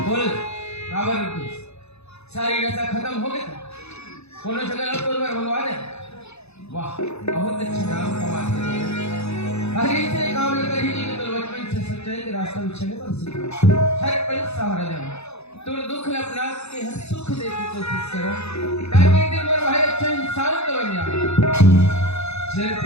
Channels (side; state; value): right; late; 0.80 ms